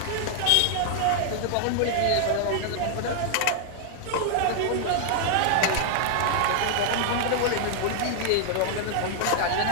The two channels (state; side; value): different; both; correlation 0.00